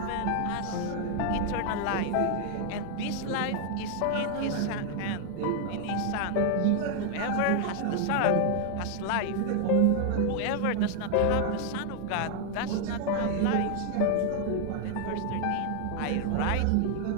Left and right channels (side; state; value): both; different; correlation 0.00